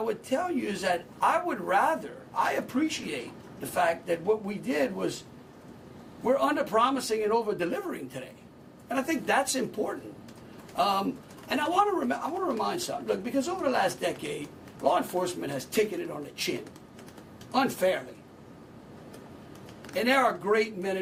would tell you is that I appreciate the fact that what we did was we're under-promising and over-delivering today. And I think that's important. And I want to remind something. Look, because over the last decade, law enforcement has taken it on the chin, unfairly. And there are great men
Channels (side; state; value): both; identical; correlation 1.00